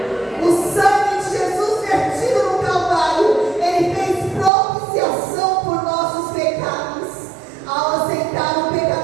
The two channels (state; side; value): drops out; left; at 4.5 s